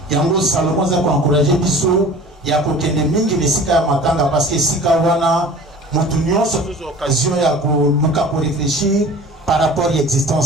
Il y a un Salomon qui a encouragé Bisso, il y a des mingi de Sika Matanga parce que Sika Wana, Moutunion, c'est une occasion de réfléchir par rapport à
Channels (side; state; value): both; normal; correlation 0.42